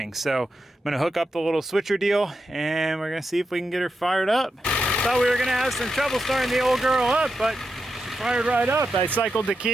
So I'm gonna hook up the little switcher deal and we're gonna see if we can get her fired up. Thought we were gonna have some trouble starting the old girl up, but she fired right up. I cycled the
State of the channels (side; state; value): both; normal; correlation 0.87